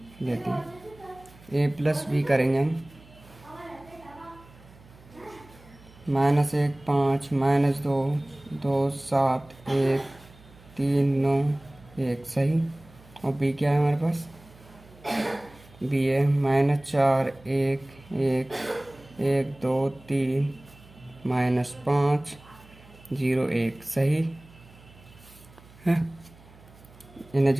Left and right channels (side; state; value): right; noise; hum, 24 dB below the sound